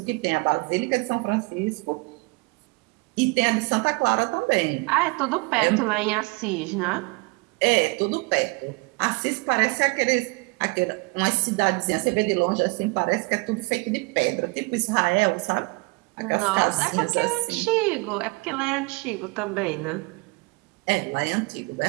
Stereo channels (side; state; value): left; quieter; 28.2 dB